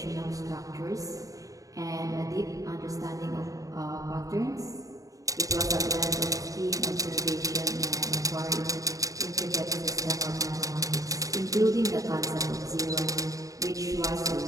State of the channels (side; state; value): left; late; 0.16 ms